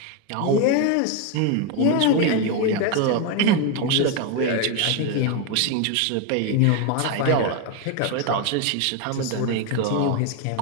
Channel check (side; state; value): both; different; correlation 0.02